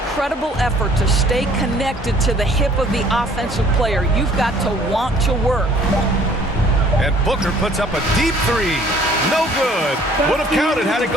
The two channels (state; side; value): normal; both; correlation 0.56